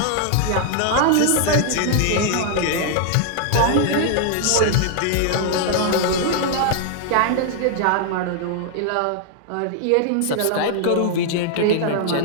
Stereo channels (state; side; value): different; both; correlation 0.00